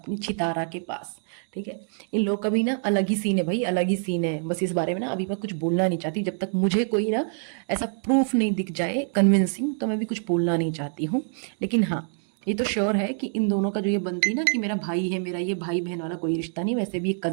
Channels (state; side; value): silent; left; 61 dB below the other